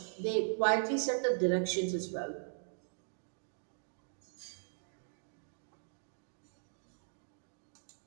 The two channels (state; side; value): silent; left; digital silence